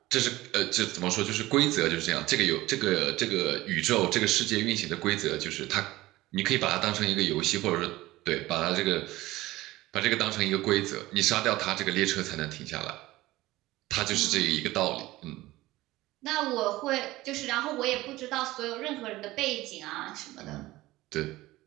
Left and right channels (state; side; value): quieter; left; 17.9 dB